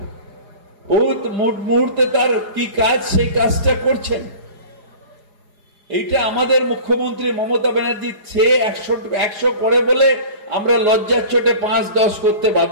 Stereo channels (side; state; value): left; late; 4.9 ms